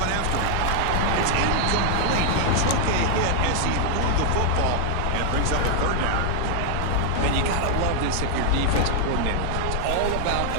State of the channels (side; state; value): both; different; correlation 0.00